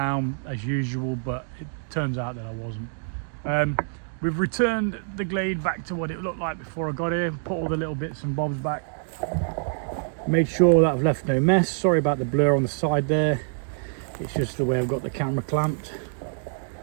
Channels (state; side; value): silent; left; digital silence